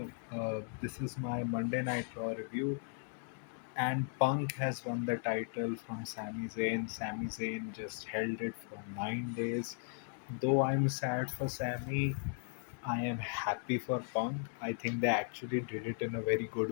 is my Monday Night Raw review, and Punk has won the title from Sami Zayn. Sami Zayn just held it for 9 days. Though I'm sad for Sami, I am happy for Punk. I think they actually did it in a very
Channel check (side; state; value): right; silent; 53 dB below the other